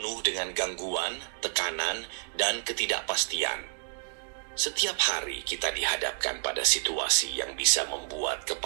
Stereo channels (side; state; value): left; silent; digital silence